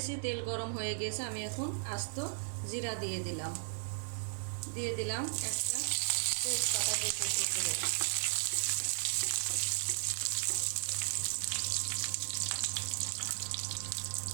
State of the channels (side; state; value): left; silent; digital silence